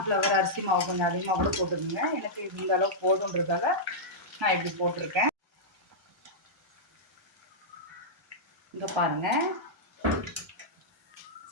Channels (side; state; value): both; normal; correlation -0.10